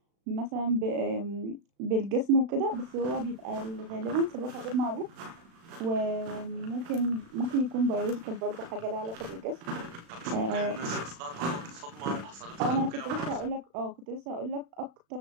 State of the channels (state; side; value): late; left; 36 ms